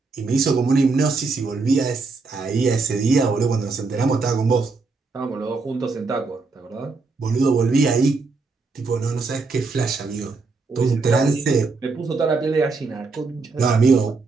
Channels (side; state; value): left; quieter; 4.1 dB